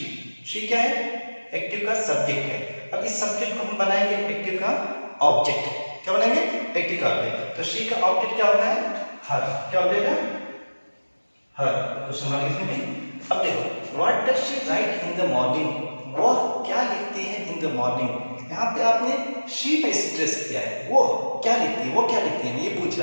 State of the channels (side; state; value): both; inverted; correlation -1.00